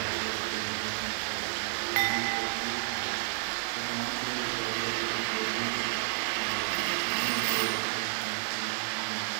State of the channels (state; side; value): silent; left; 57 dB below the other